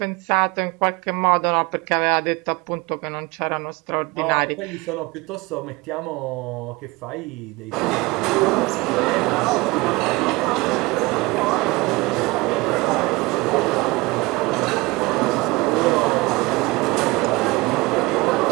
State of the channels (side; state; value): left; quieter; 23.1 dB